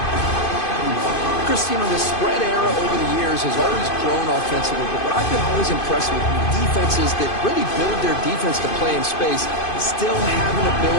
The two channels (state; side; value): late; right; 2.5 ms